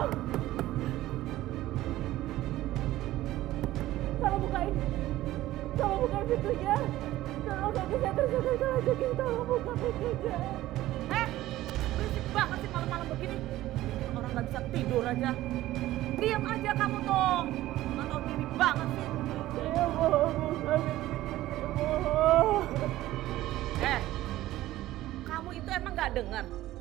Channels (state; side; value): quieter; left; 15.5 dB